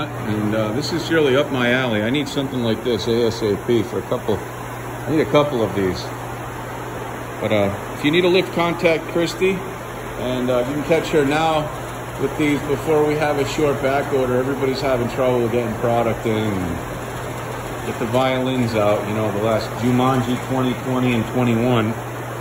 And this is really up my alley. I need something like this ASAP for a couple. I need a couple of these. But if you need a lift, contact Christy. And you can catch her now with these before we have a short back order. Everybody's having trouble getting product in. And get the violins out, you know, the last Jumanji 2020 and 21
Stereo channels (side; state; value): both; identical; correlation 1.00